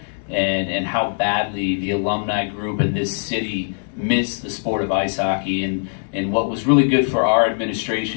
and how badly the alumni group in this city miss the sport of ice hockey. And what was really good for our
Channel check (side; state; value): right; silent; digital silence